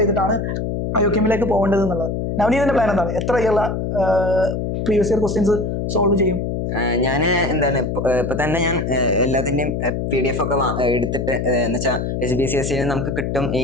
ചെയ്തിട്ടാണ് IOQMലേക്ക് പോകേണ്ടത് എന്നുള്ളത്. നവനീതിന്റെ പ്ലാൻ എന്താണ്? എത്ര ഇയറിലെ പ്രീവിയസ് ഇയർ ക്വസ്റ്റ്യൻസ് സോൾവ് ചെയ്യും? ഞാൻ എന്താണ് ഇപ്പൊ തന്നെ ഞാൻ എല്ലാത്തിന്റെയും PDF ഒക്കെ എടുത്തിട്ട് എന്ന് വെച്ചാൽ SBCSE നമുക്ക് കിട്ടും ഈ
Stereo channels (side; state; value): left; noise; hum, 2 dB below the sound